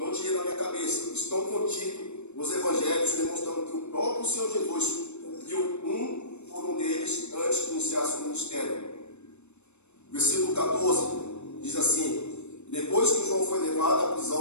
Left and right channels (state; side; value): late; right; 0.82 ms